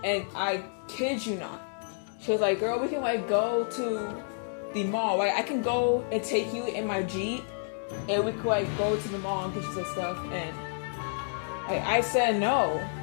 and I kid you not, she was like, girl, we can, like, go to the mall. Like, I can go and take you in my Jeep, and we could, like, go to the mall and get you some stuff. And like, I said no.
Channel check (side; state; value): right; silent; digital silence